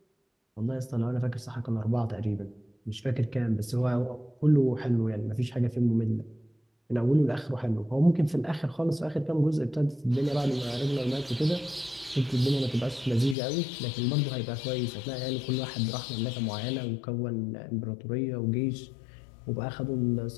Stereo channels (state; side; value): drops out; right; at 13.4 s